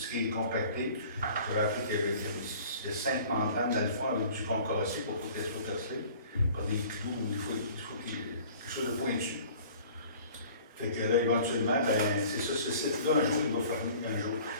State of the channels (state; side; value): inverted; both; correlation -0.48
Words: qui est compacté. J'avais appris qu'il y a 5 membranes dans le fond avec du concassé pour qu'elle soit percée par des clous ou il faut qu'il y ait quelque chose de pointu. Fait que là, éventuellement, ben, c'est ça, ce site-là, un jour, il va fermer.